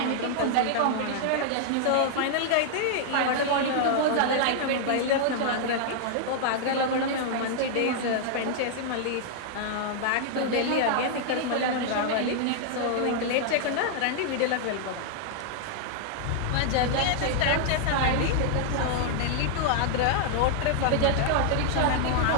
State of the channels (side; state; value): both; different; correlation -0.01